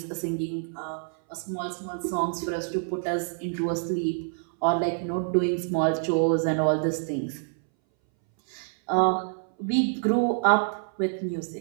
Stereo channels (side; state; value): left; silent; 60 dB below the other